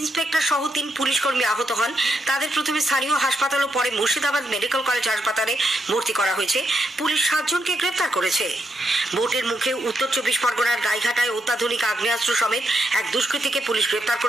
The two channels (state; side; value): normal; both; correlation 0.81